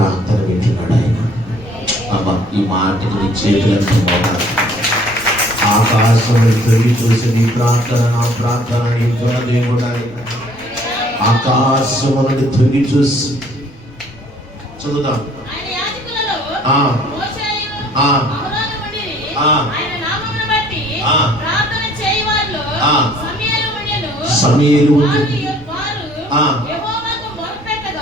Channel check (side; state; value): both; normal; correlation 0.58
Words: వింటున్నాడు ఆయన. అబ్బా, ఈ మాటకి నీ చేతులను మోగాలి. ఆకాశముని తొలి చూసి నీ ప్రార్థన నా ప్రార్థన వింటున్న దేవుడు ఆయన. ఆకాశముని తొలి చూసి చదువుదాం. సమూయేలు